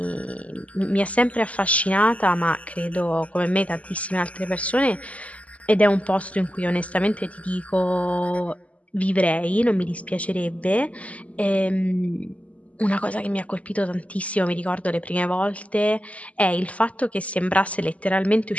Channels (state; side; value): late; right; 0.068 ms